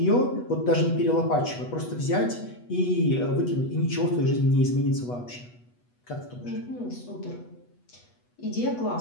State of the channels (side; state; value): right; late; 8.2 ms